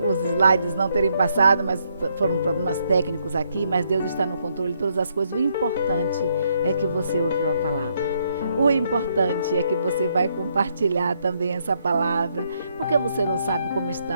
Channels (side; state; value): both; inverted; correlation -0.74